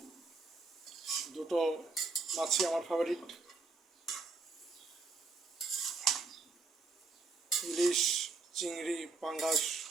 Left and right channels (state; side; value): quieter; left; 4.0 dB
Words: দুটো মাছই আমার ফেভারিট, ইলিশ, চিংড়ি, পাঙ্গাস।